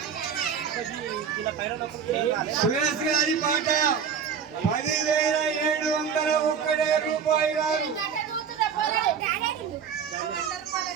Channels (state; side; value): quieter; left; 7.2 dB